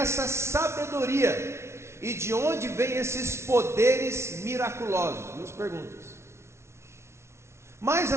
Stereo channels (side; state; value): left; late; 0.13 ms